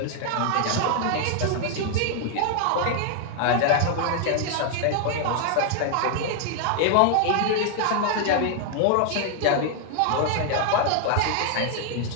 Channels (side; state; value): both; different; correlation 0.00